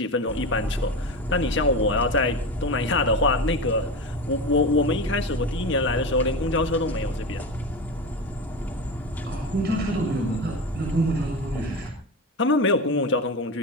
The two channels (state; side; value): normal; both; correlation 0.23